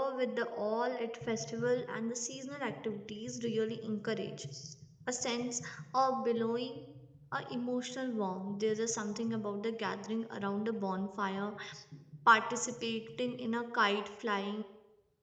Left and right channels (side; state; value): both; identical; correlation 1.00